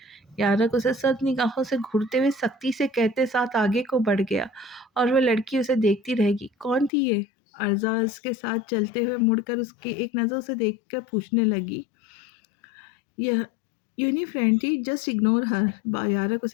यारक उसे सद निगाहों से घूरते हुए सख्ती से कहते साथ आगे को बढ़ गया और वह लड़की उसे देखती रहेगी। कौन थी ये? अर्जा उसके साथ चलते हुए मुड़कर उसकी एक नज़र से देखकर पूछने लगी। यह यूनी फ्रेंड थी, जस्ट इग्नोर हर। यारक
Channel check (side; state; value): right; drops out; at 6.9 s